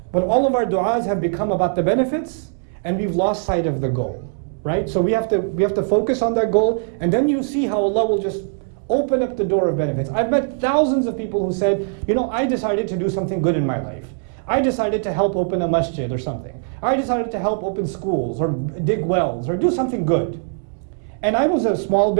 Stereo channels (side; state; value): left; silent; 65 dB below the other